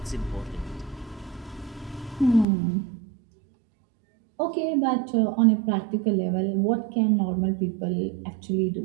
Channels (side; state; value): left; drops out; at 2.5 s